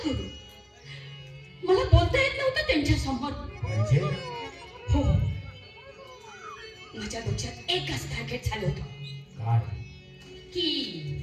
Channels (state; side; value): identical; both; correlation 1.00